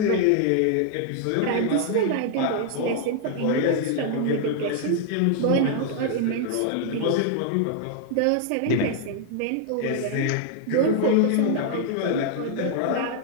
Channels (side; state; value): both; different; correlation -0.01